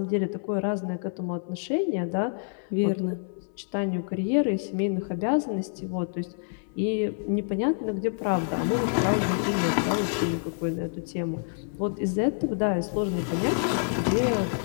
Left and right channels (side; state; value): right; silent; 60 dB below the other